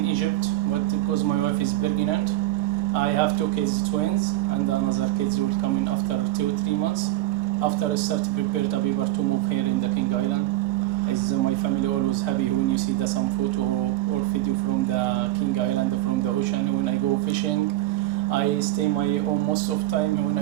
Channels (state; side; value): quieter; left; 15.5 dB